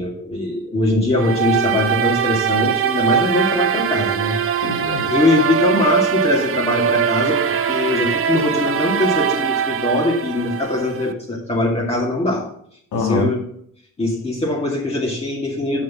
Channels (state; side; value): normal; both; correlation 0.21